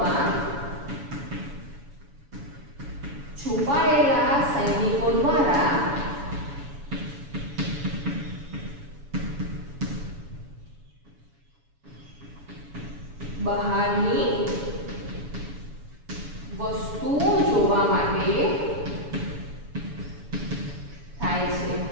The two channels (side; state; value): left; late; 7.0 ms